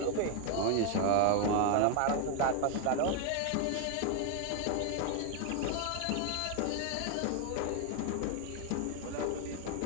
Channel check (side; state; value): both; different; correlation 0.00